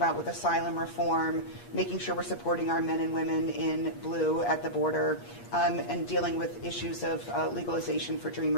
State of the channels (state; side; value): late; right; 8.4 ms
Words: with asylum reform, making sure we're supporting our men and women in blue at the border, and dealing with issues of legalization for